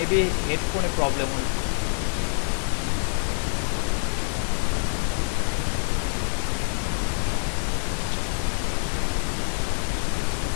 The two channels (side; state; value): right; silent; digital silence